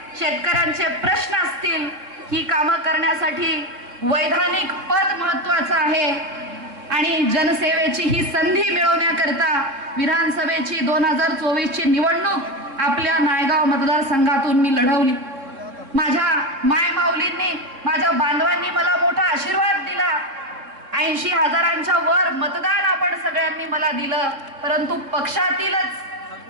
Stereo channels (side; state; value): left; late; 3.7 ms